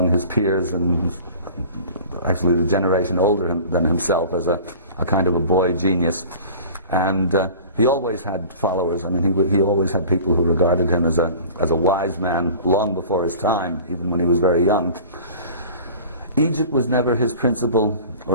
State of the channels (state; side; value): inverted; both; correlation -0.42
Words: his peers, and actually the generation older than himself, as a kind of a boy genius. And he always had followers. I mean, he always had people who regarded him as a wise man long before his time, even when he was very young. Egypt was never his principal